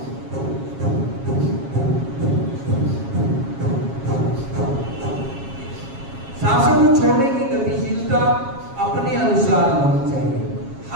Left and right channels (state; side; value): late; left; 7.3 ms